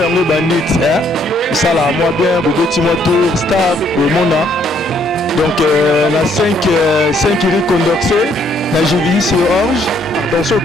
yango bandit ça là moi bien bobeti moi tour staff bomona. Donc na 5 iri condorcé na Jivisi Orge, dans ce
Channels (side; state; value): both; normal; correlation 0.68